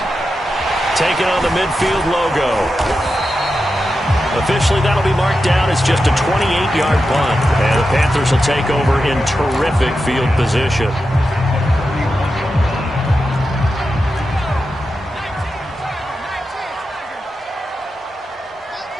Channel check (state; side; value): normal; both; correlation 0.90